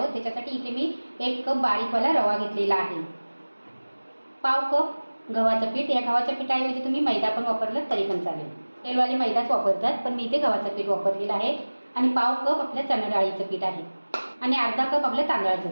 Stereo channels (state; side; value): inverted; both; correlation -1.00